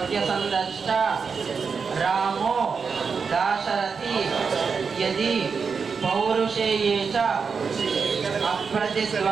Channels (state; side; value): quieter; left; 5.5 dB